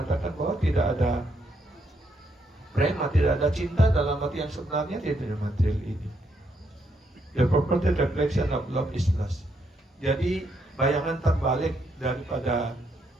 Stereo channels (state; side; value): normal; both; correlation 0.76